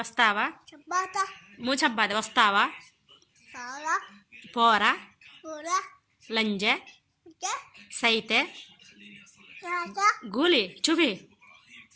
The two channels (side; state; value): both; identical; correlation 1.00